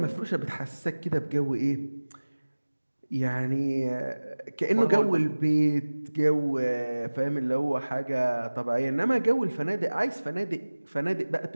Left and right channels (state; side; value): inverted; both; correlation -1.00